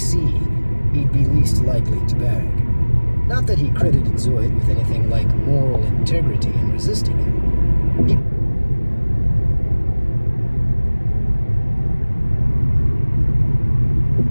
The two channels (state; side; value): inverted; both; correlation -1.00